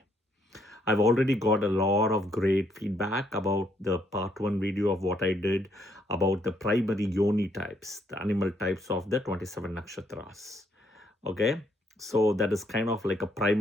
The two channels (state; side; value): normal; both; correlation 0.72